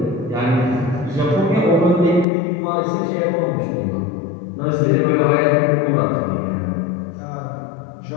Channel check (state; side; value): drops out; right; at 2.2 s